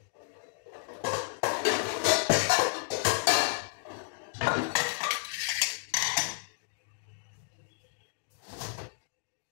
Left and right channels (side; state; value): right; silent; digital silence